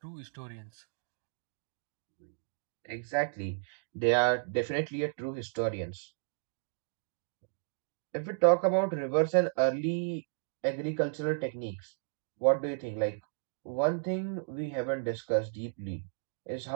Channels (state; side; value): silent; left; digital silence